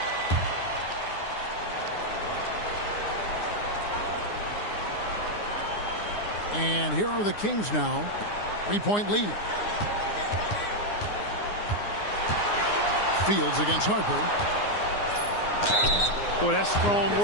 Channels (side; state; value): right; late; 9.7 ms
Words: And here are the Kings now. 3-point lead. Fields against Harper. Boy, that's strong